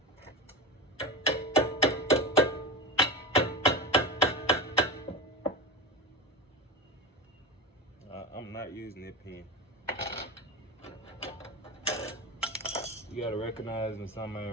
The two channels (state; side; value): normal; both; correlation 0.24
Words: I'm not using that pin. You gotta recognize when something